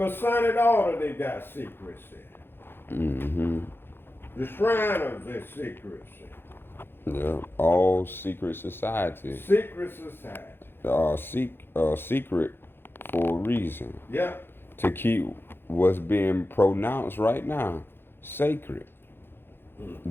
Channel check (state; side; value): late; right; 0.10 ms